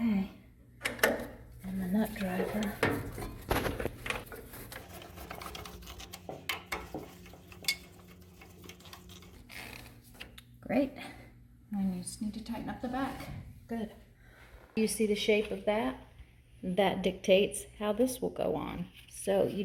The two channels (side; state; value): both; identical; correlation 1.00